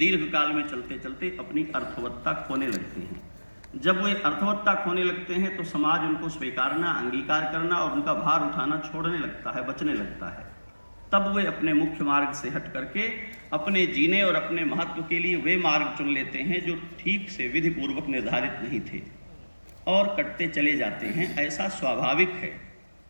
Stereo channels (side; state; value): both; inverted; correlation -1.00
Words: में चलते चलते अपनी अर्थवत्ता खोने लगते हैं। जब वे अर्थवत्ता खोने लगते हैं तो समाज उनको स्वीकारना, अंगीकार करना और उनका भार उठाना छोड़ने लगता है, बचने लगता है। तब वे अपने मुख्य मार्ग से हट करके अपने जीने और अपने महत्व के लिए वे मार्ग चुन लेते हैं जो ठीक से विधि पूर्वक निर्धारित नहीं थे और कटते चले जाते हैं। ऐसा स्वाभाविक है।